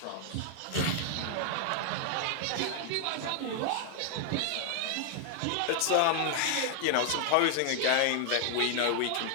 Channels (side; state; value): both; different; correlation 0.00